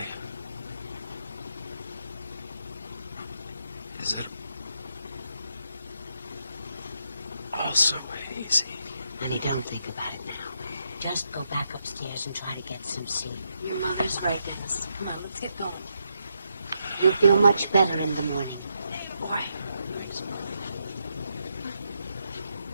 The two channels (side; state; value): both; inverted; correlation -0.80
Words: is it all so hazy? Honey, don't think about it now. Just go back upstairs and try to get some sleep. Your mother's right, Dennis. Come on, let's get going. You'll feel much better in the morning. Boy. Thanks, Mom.